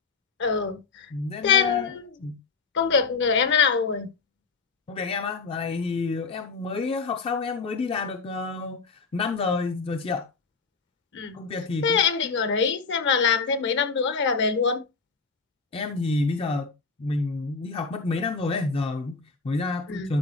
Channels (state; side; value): quieter; right; 4.8 dB